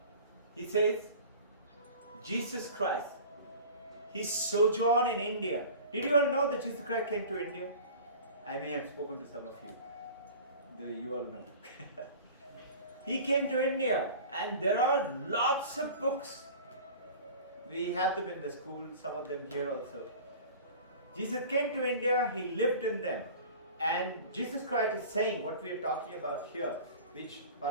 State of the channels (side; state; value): both; inverted; correlation -0.40